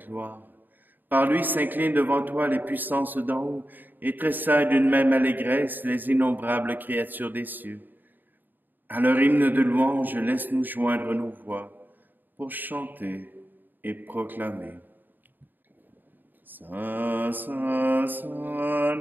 Par lui s'inclinent devant toi les puissances d'en haut, et tressaillent d'une même allégresse les innombrables créatures des cieux. À leur hymne de louange, laisse-nous joindre nos voix, pour chanter et proclamer. Saint, Saint, Saint,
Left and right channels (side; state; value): left; late; 0.090 ms